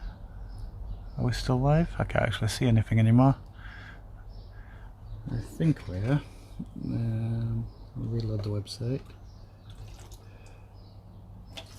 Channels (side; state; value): both; identical; correlation 1.00